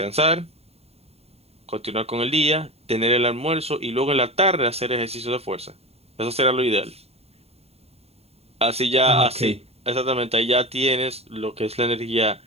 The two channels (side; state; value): left; late; 0.30 ms